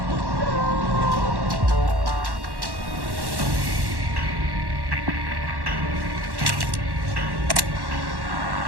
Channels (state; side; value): late; left; 1.1 ms